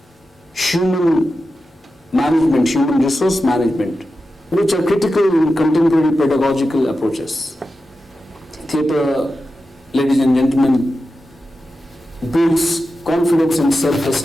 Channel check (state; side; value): normal; both; correlation 0.91